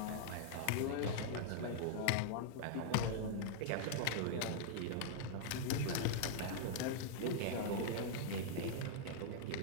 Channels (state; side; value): different; both; correlation -0.01